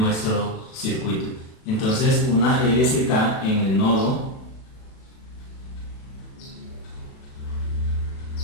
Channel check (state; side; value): late; right; 37 ms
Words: circuito. Entonces, una LSK en el nodo